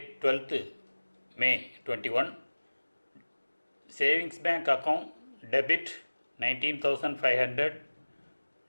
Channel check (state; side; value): inverted; both; correlation -1.00